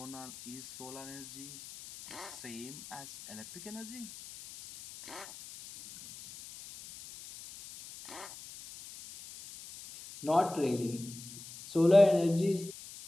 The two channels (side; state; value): left; noise; hiss, 15 dB below the sound